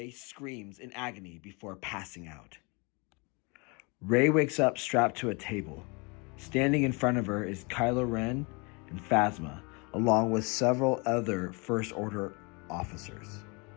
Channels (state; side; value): quieter; right; 30.1 dB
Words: screams in agony before passing out. Rey wakes up strapped to a table. Standing in front of her is Kylo Ren and Phasma, along with several other First Order officers.